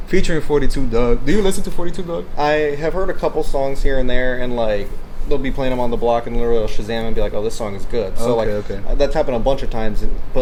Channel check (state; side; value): identical; both; correlation 1.00